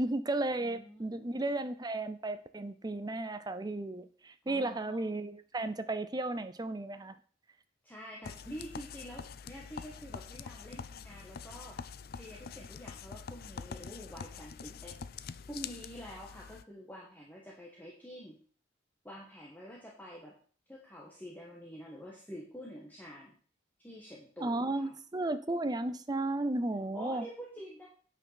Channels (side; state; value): both; normal; correlation 0.63